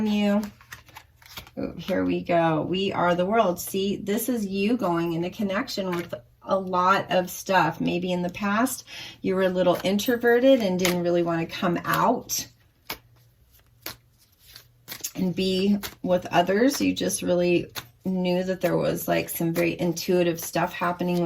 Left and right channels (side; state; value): both; identical; correlation 1.00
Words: you. Oh, here we go. We are the world. See, this is you going into connection with a lot of stuff. Maybe in the past you were a little introverted and didn't really want to come out and be with others. You just really knew that there was like some very intuitive stuff happening